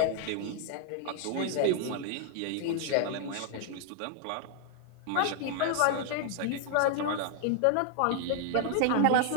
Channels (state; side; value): different; both; correlation 0.00